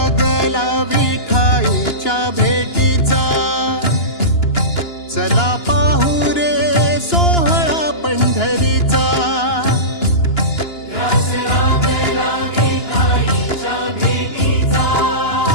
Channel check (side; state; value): right; late; 2.9 ms